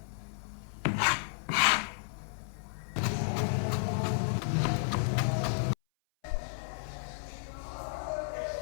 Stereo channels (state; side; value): silent; right; 56 dB below the other